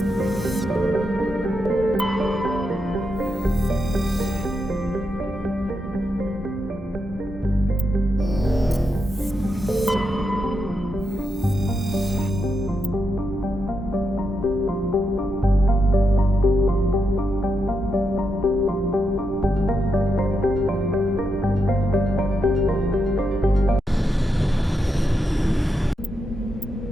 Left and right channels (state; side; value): normal; both; correlation 0.84